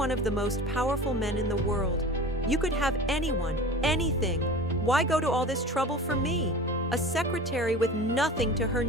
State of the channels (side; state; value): both; normal; correlation 0.36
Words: of the most powerful men in the world. You could have anyone, anything. Why go to all this trouble for me, a secretary with nothing to her